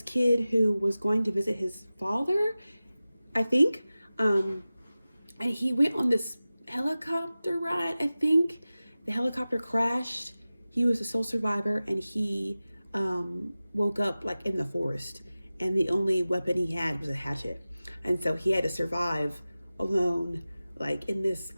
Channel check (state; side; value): inverted; both; correlation -0.96